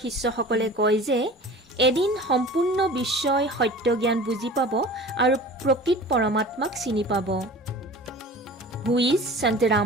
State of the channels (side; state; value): both; normal; correlation 0.40